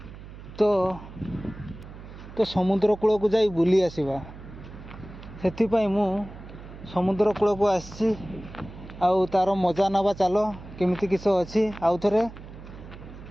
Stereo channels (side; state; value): right; noise; hum, 15 dB below the sound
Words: तो समुद्र कूल को जाई बुली आसवा से मु समुद्र कूल को आसी आउ तार मजा नवा चलो केमिति किस अच्छी आउ थे